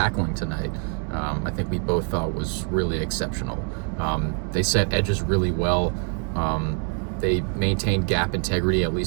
tonight, I think we both thought was really exceptional. They set edges really well. They maintained gap integrity, at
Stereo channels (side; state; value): left; quieter; 38.4 dB